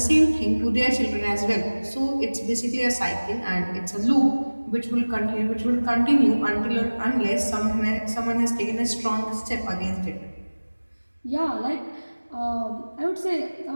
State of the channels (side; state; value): both; inverted; correlation -1.00